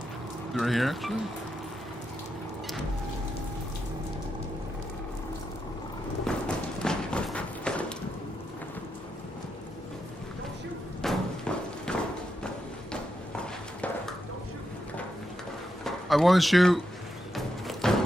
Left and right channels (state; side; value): normal; both; correlation 0.85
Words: Right here, actually? I want to shoot.